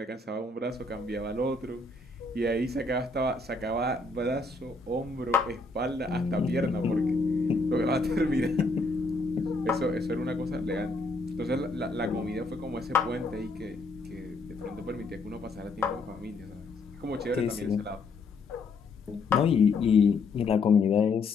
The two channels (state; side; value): quieter; right; 3.5 dB